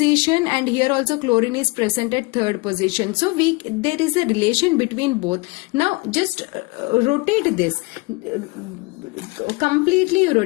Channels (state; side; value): quieter; right; 25.7 dB